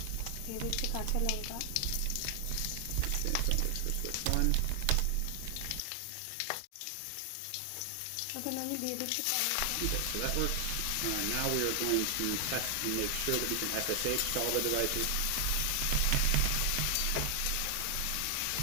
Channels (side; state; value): both; different; correlation 0.00